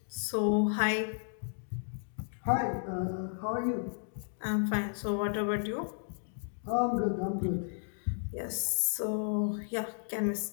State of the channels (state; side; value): silent; right; digital silence